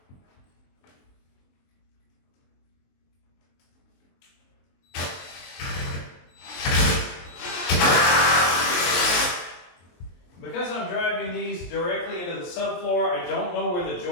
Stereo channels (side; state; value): right; late; 23 ms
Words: directly into the subfloor. I don't know where the